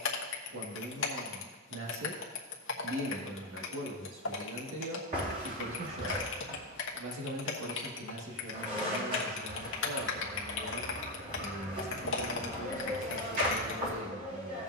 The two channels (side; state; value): both; normal; correlation 0.08